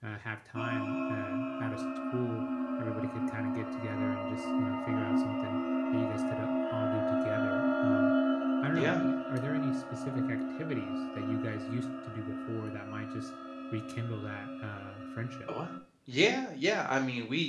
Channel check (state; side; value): identical; both; correlation 1.00